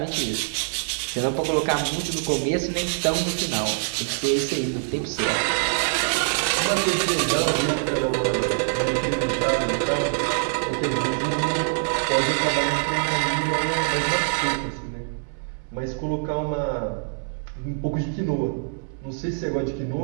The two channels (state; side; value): silent; left; 62 dB below the other